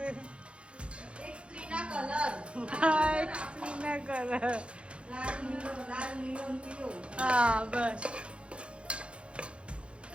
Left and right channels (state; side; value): late; left; 0.058 ms